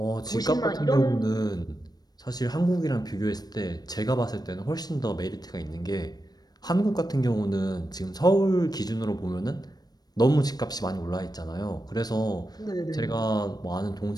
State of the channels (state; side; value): late; right; 0.19 ms